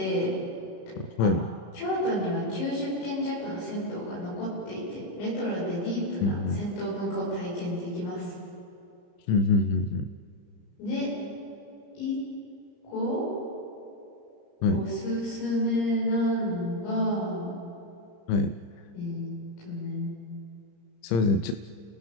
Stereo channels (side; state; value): right; late; 34 ms